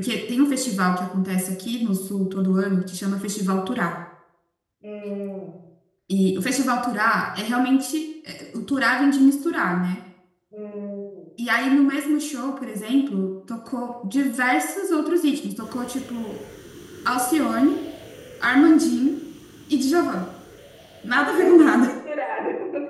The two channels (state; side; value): identical; both; correlation 1.00